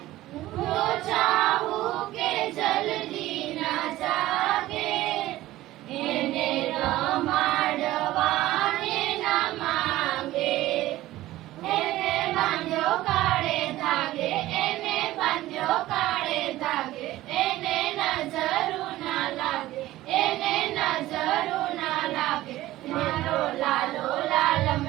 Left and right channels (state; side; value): quieter; left; 16.1 dB